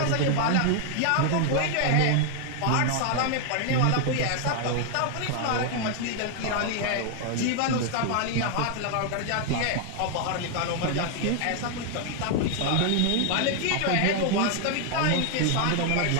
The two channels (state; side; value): different; both; correlation 0.00